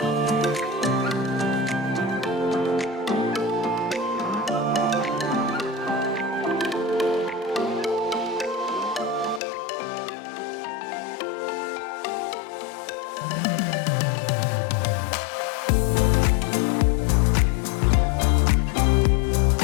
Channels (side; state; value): right; drops out; at 9.4 s